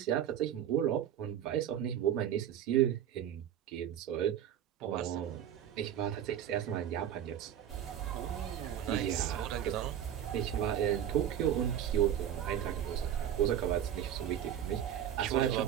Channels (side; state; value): left; quieter; 10.2 dB